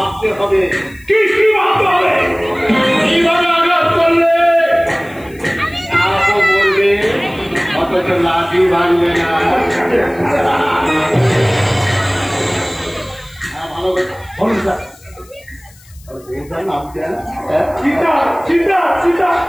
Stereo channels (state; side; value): noise; left; hiss, 26 dB below the sound